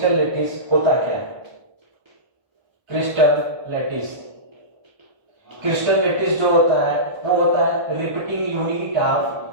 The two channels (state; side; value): late; left; 1.2 ms